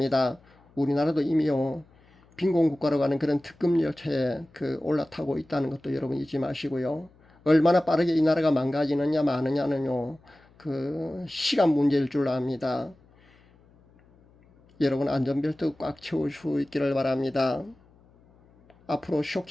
우리나라도 이미요, 빈곤 국가로 가는 그런 특급 열차에 올라타고 있다는 것도 여러분 잊지 마시고요. 얼마나 빠르게 이 나라가 망가지느냐 마느냐는요, 시간 문제일 줄 압니다. 여러분 안전벨트 꽉 채울 수 있기를 바랍니다. 앞으로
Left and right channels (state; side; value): noise; left; hum, 30 dB below the sound